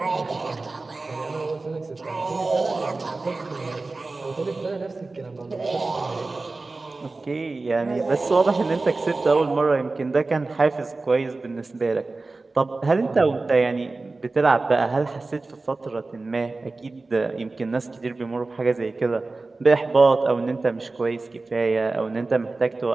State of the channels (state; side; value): quieter; left; 3.5 dB